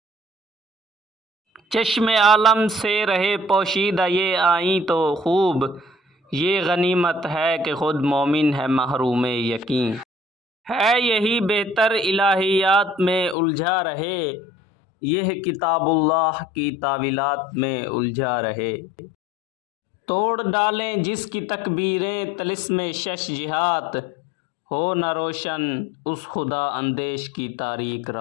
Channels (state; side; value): drops out; right; at 13.4 s